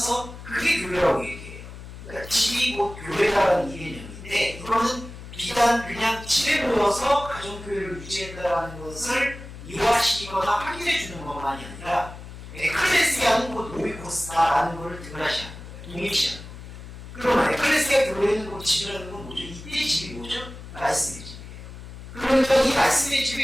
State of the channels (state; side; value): noise; left; hum, 13 dB below the sound